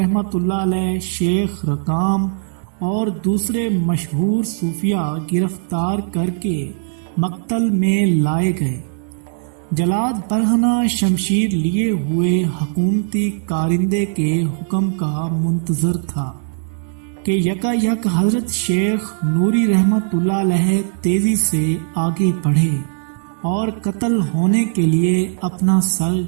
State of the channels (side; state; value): left; silent; digital silence